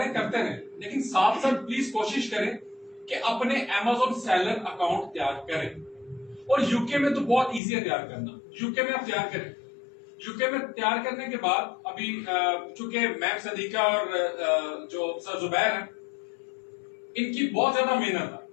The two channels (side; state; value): right; drops out; at 7.6 s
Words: करते रहें, लेकिन साथ साथ प्लीज कोशिश करें कि अपने Amazon सेलर अकाउंट तैयार करें। और यूके में तो बहुत इजी है तैयार करना, यूके में आप तैयार करें। यूके में तैयार करने के बाद अभी चूंकि मैम सदीका और जो सर जुबैर हैं, इनकी बहुत ज्यादा मेहनत है,